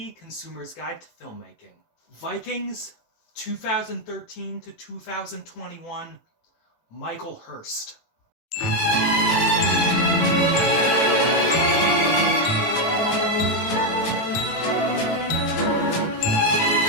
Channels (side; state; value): right; late; 18 ms